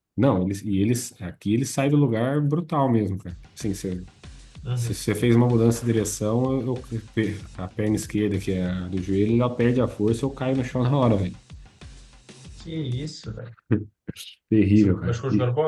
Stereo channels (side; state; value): both; identical; correlation 1.00